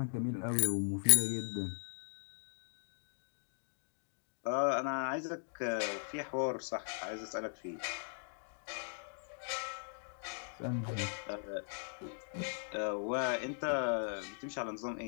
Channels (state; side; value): silent; right; digital silence